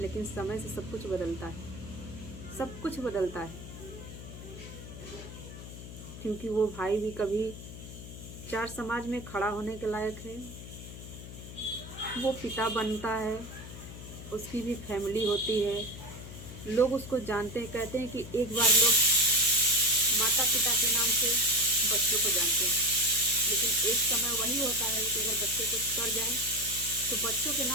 समय से सब कुछ बदलता है, सब कुछ बदलता है। क्योंकि वो भाई भी कभी चार समाज में खड़ा होने के लायक है, वो पिता बनता है, उसकी भी फैमिली होती है, लोग उसको जानते हैं। कहते हैं कि एक बार लोग माता पिता के नाम से बच्चों को जानते हैं, लेकिन एक समय वही होता है कि अगर बच्चे कुछ कर जाए तो बच्चों के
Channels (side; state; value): left; noise; hum, 13 dB below the sound